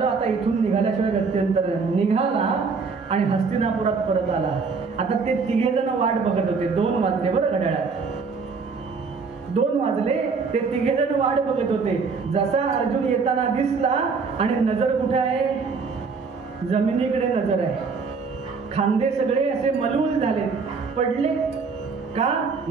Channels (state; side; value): quieter; left; 4.9 dB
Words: आता इथून निघाल्याशिवाय गत्यंतर. निघाला आणि हस्तिनापुरात परत आला. आता ते तिघे जण वाट बघत होते. 2 वाजले बरं घड्याळात, 2 वाजले. ते तिघे जण वाट बघत होते. जसा अर्जुन येताना दिसला आणि नजर कुठे आहे? जमिनीकडे नजर आहे. खांदे सगळे असे मलूल झाले, पडले का?